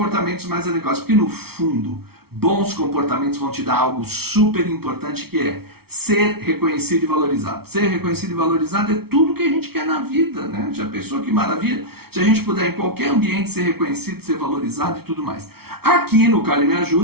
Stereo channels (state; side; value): late; left; 0.95 ms